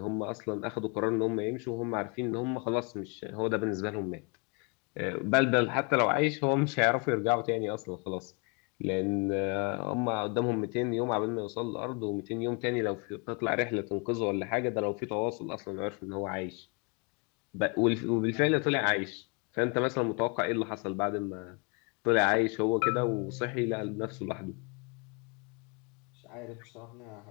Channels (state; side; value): quieter; right; 33.3 dB